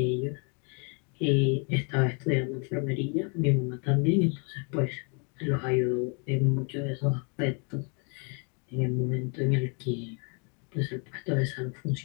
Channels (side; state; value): right; quieter; 36.9 dB